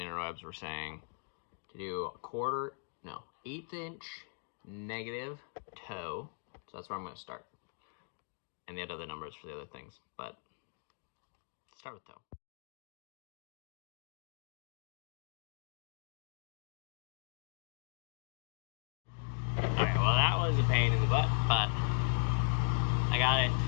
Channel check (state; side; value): silent; right; 52 dB below the other